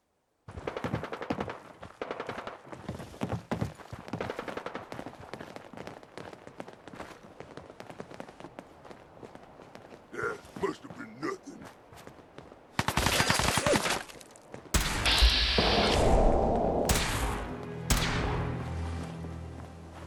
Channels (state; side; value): identical; both; correlation 1.00